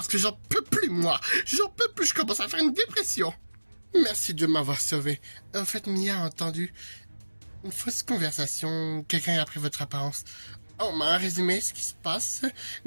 que j'en peux plus, moi. J'en peux plus, je commence à faire une dépression. Merci de m'avoir sauvé. En fait, Mia a entendu une fausse conversation. Quelqu'un a pris votre apparence. On m'a résumé ce qui se passe,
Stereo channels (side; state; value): both; inverted; correlation -1.00